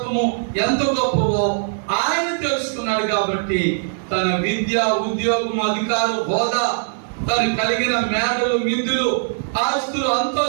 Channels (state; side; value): silent; left; 65 dB below the other